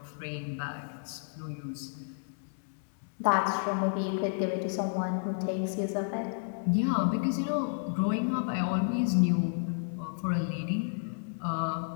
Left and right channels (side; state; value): right; silent; digital silence